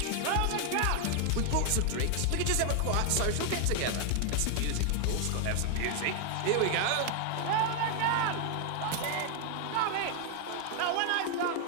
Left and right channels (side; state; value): both; different; correlation 0.00